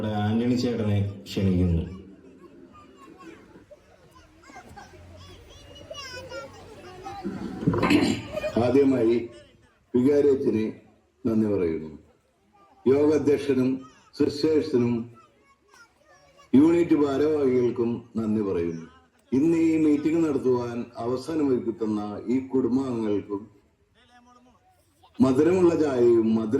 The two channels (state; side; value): identical; both; correlation 1.00